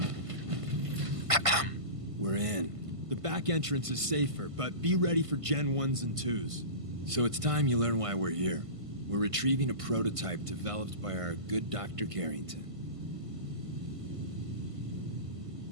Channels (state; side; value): late; left; 1.5 ms